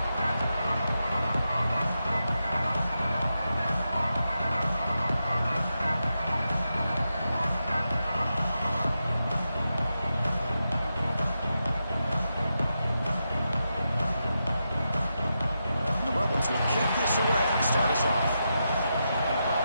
Will kick this away to start us off.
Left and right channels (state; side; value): inverted; both; correlation -0.87